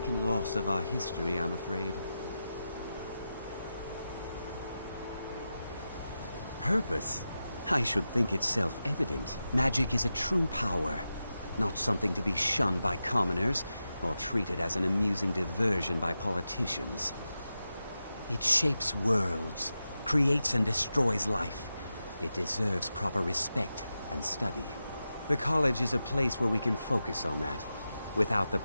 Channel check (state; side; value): inverted; both; correlation -0.91